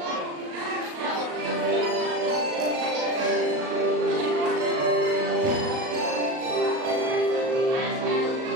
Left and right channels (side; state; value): left; late; 38 ms